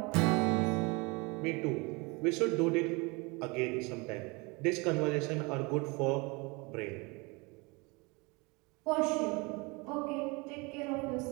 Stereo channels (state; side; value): quieter; left; 27.4 dB